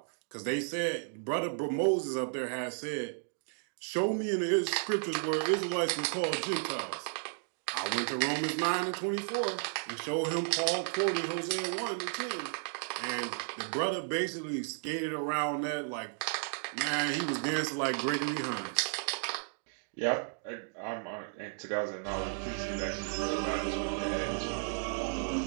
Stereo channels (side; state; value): left; silent; digital silence